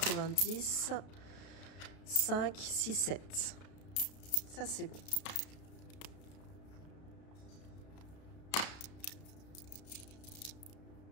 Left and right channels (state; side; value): late; right; 32 ms